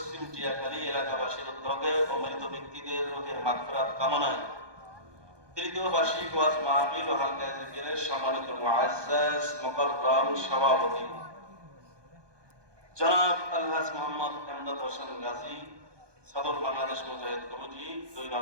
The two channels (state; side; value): late; left; 1.2 ms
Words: টিয়াখালী এলাকাবাসীর উদ্যোগে অমৃত ব্যক্তিদের রোগের মাগফিরাত কামনায় তৃতীয় বার্ষিক ওয়াজ মাহফিল ও হালকা জিকিরের সম্মানিত মুআজ্জাজ মুকাররম সভাপতি জনাব আলহাজ মোহাম্মদ এমদাদ হোসেন গাজী, সদর বাংলাদেশ মুজাহিদ কমিটি 2